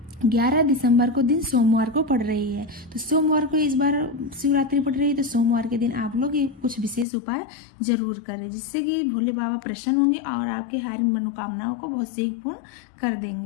11 दिसंबर को दिन सोमवार को पड़ रही है। तो सोमवार को इस बार शिवरात्रि पड़ रही है, तो सोमवार के दिन आप लोग ये कुछ विशेष उपाय जरूर करें, जिससे कि भोले बाबा प्रसन्न होंगे और आपके हर मनोकामनाओं को बहुत शीघ्र पूर्ण कर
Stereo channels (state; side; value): drops out; right; at 7.1 s